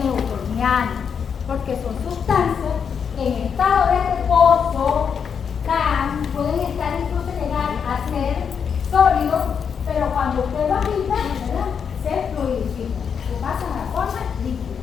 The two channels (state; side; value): quieter; right; 6.9 dB